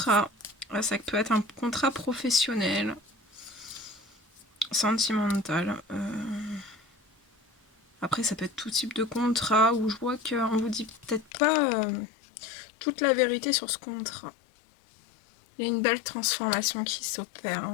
Ça peut être un contrat professionnel, sentimental. Après, ça peut être tout type de contrat où je vois qu'on vous dit peut-être pas toute la vérité sur ce contrat. Il y a une belle transformation qui s'opère.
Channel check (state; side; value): drops out; right; at 11.2 s